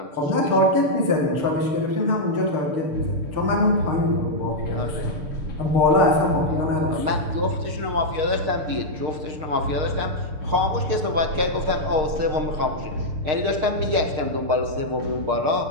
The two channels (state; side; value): late; left; 6.5 ms